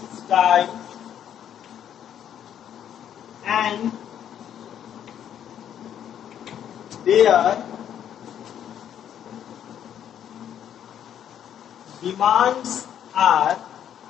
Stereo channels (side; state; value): right; quieter; 9.8 dB